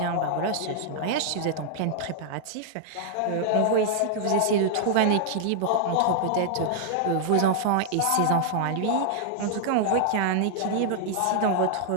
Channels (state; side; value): different; both; correlation -0.01